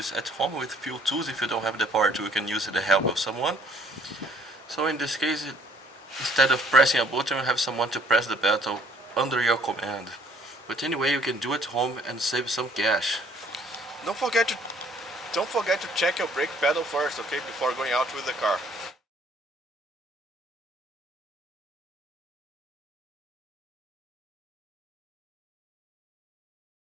at home with few tools. If you don't have the power tool, you can use the help of someone. So in this case, instead of pressing a button, you have someone to press the button under your command. But anyway, you can do it at home and save some cash. Don't forget to check your brake pedal first, okay, before going out with the car.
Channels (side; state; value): both; normal; correlation 0.60